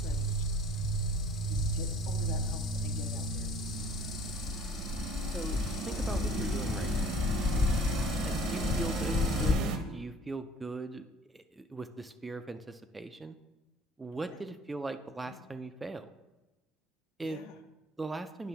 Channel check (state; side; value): normal; both; correlation 0.50